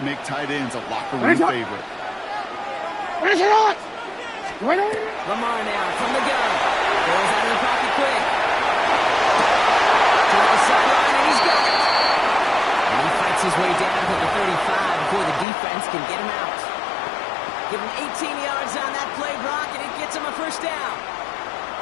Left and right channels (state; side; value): drops out; right; at 15.5 s